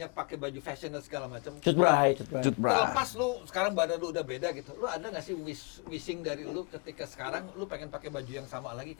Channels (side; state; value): right; quieter; 33.4 dB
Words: pakai baju fashion dan segala macam. Cut Bray. Terlepas lu sekarang badan lu udah beda gitu. Lu ada nggak sih wishing dari lu ketika sekarang lu pengen pakai baju yang sama lagi